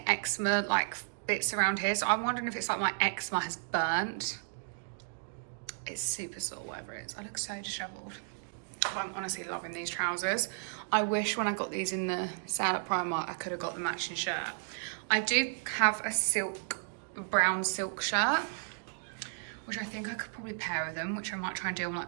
eczema like bits around here, so I'm wondering if it's like my eczema has burnt. It's super sore, whatever it is. I look so disheveled. But I'm honestly loving these trousers. I wish when I got these in the sale at Primark, I could have got the matching shirt. I do have a brown silk shirt, which I think I could probably pair with them, which I might try and do on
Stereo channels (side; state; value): left; silent; digital silence